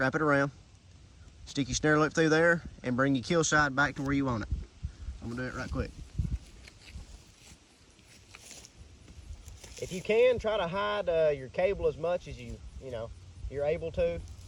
it around. Stick your snare loop through there and bring your kill side back to where you want it. I'm gonna do it right quick. If you can, try to hide your cable as much as you're able to.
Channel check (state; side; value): identical; both; correlation 1.00